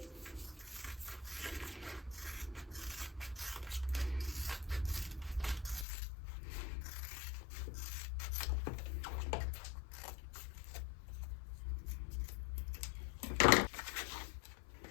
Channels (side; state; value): right; drops out; at 5.9 s